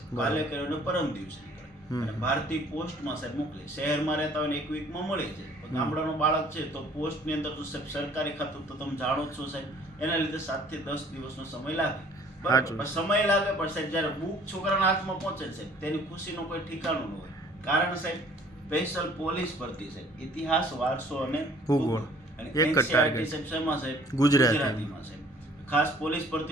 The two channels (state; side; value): normal; both; correlation 0.55